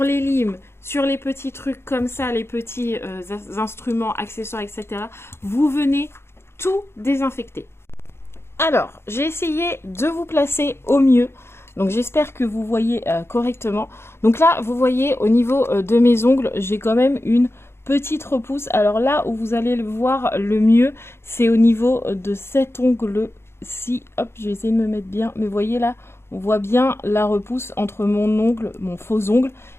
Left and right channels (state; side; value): late; right; 0.12 ms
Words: les limes, sur les petits trucs comme ça, les petits instruments, accessoires, etc. Vous venez tout désinfecter. Alors, j'ai essayé de vous placer au mieux. Donc, j'espère que vous voyez correctement. Donc là, vous voyez au niveau de mes ongles, j'ai quand même une petite repousse. Alors là où vous allez le voir le mieux, c'est au niveau de cet ongle-ci. Hop, je vais essayer de me mettre bien. Mais vous voyez là, on voit bien la repousse entre mon ongle, mon faux ongle,